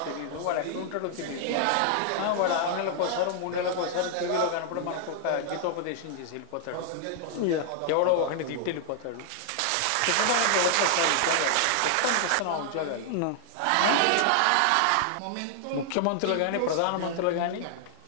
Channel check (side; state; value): both; different; correlation -0.01